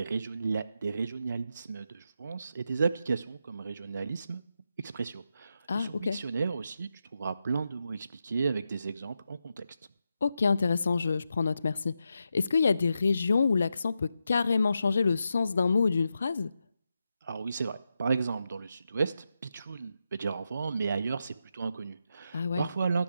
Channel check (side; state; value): both; inverted; correlation -0.87